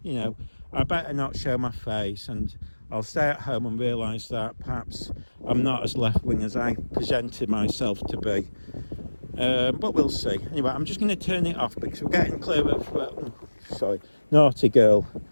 better not show my face, and I'll stay at home and realise that perhaps I'm not as left-wing as I presented myself to be. But we'll see. Anyway, I'm just going to turn it off because we're getting clear of... naughty girl.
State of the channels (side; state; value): both; inverted; correlation -1.00